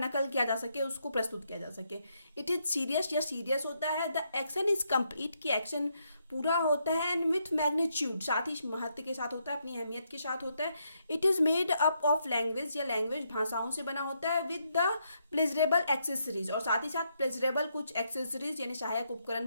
किया जा सके, उसको प्रस्तुत किया जा सके। इट इज सीरियस, या सीरियस होता है। द एक्शन इज कंप्लीट, की एक्शन पूरा होता है, एंड विथ मैग्नीट्यूड, साथ ही महत्व के साथ होता है, अपनी अहमियत के साथ होता है। It is made up of language, या लैंग्वेज भाषाओं से बना होता है, विद द प्लेजरेबल एक्सेसरीज, और साथ ही साथ प्लेजरेबल कुछ एक्सेसरीज यानी सहायक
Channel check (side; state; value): both; inverted; correlation -0.77